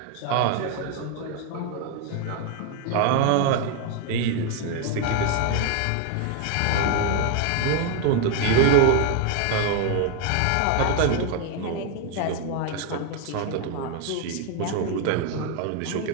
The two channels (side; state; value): both; different; correlation 0.01